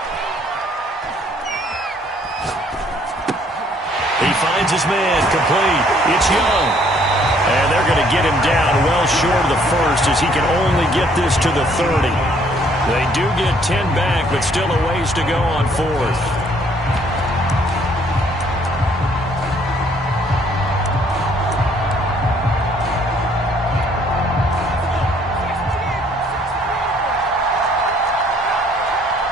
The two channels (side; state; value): both; normal; correlation 0.63